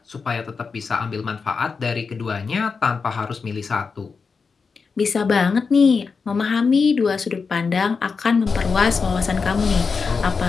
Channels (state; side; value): quieter; right; 5.1 dB